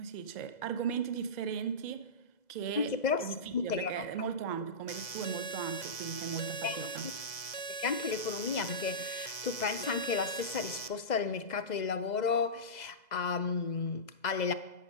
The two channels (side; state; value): right; late; 2.0 ms